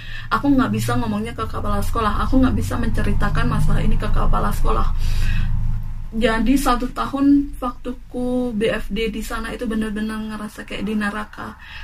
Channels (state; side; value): identical; both; correlation 1.00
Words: aku nggak bisa ngomongnya ke kepala sekolah, aku nggak bisa menceritakan masalah ini ke kepala sekolah. Jadi 1 tahun waktuku BFD di sana itu benar-benar ngerasa kayak di neraka.